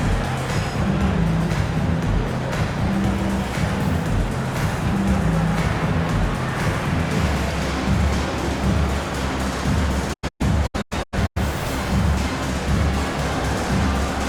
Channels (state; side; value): identical; both; correlation 1.00